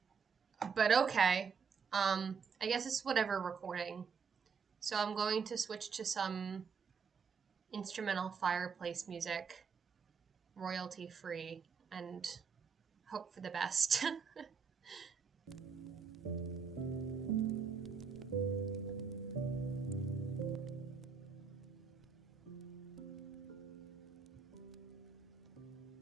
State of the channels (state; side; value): quieter; left; 5.9 dB